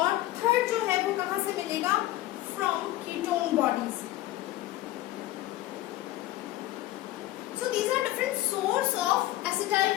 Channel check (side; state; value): right; quieter; 15.8 dB